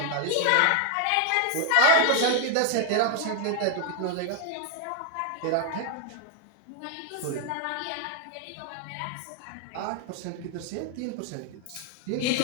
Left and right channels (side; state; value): both; different; correlation 0.00